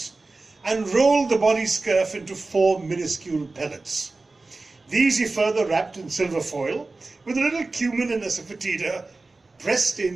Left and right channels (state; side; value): quieter; left; 3.5 dB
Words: — and rolled the body scurf into 4 minuscule pellets. These he further wrapped in silver foil, with a little cumin and asafoetida pressed